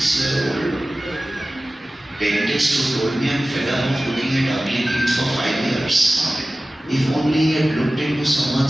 dentist who told me, I'm fed up of looking at ugly teeth for 5 years. If only he had looked into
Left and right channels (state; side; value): normal; both; correlation 0.96